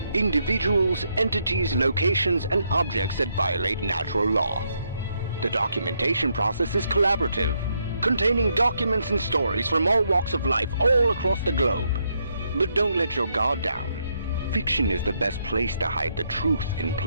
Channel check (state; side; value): inverted; both; correlation -0.76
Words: individuals, entities, locations, and objects that violate natural law. The documentation process is collaborative, containing documents and stories from all walks of life all across the globe. But don't let your guard down. Fiction is the best place to hide the truth in